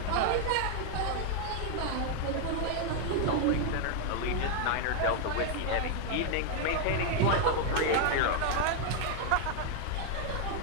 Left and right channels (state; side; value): different; both; correlation 0.00